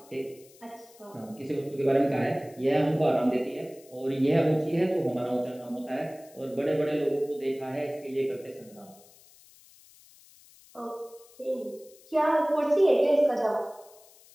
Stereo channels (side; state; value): left; noise; hiss, 25 dB below the sound